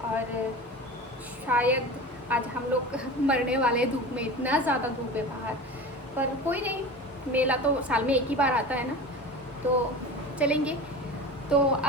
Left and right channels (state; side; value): normal; both; correlation 0.33